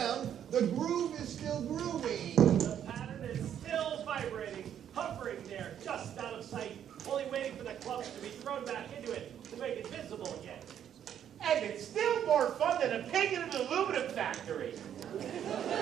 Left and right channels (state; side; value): quieter; left; 9.6 dB